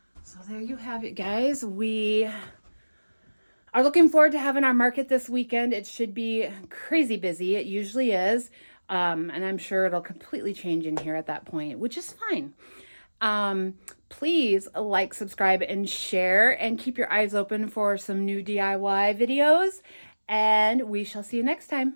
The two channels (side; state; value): both; inverted; correlation -1.00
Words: So there you have it, guys. We are looking forward to having our market this weekend. It should be crazy busy. It usually is. And I'm sure it'll completely change in here at that point, which is fine. Please like, subscribe, and share, and keep your eyes open for some new DIY videos. And we shall see you next